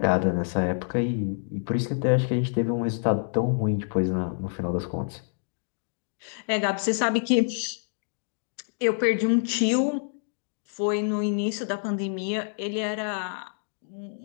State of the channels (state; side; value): silent; right; digital silence